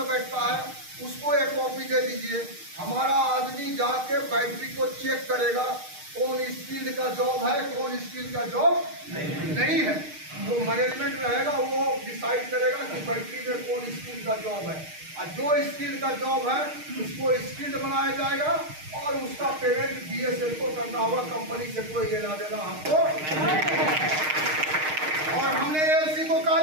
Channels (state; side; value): late; left; 6.5 ms